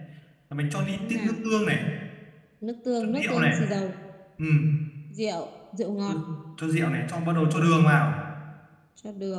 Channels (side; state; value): both; identical; correlation 1.00